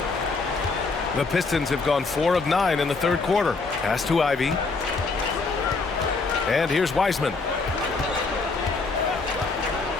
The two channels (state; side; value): quieter; right; 4.0 dB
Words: The Pistons have gone 4 of 9 in the third quarter. Pass to Ivy. And here's Wiseman.